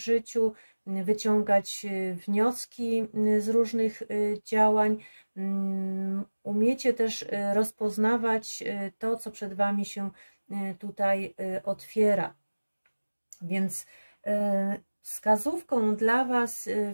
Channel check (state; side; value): inverted; both; correlation -1.00